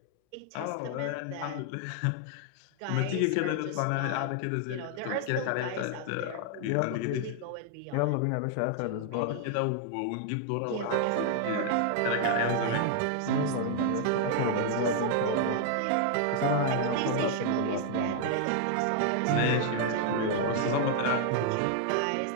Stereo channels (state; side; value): different; both; correlation 0.00